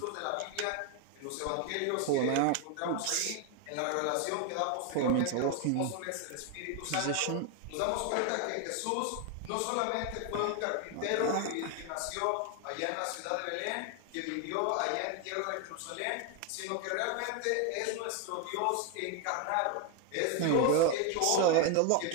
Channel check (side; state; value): both; different; correlation 0.01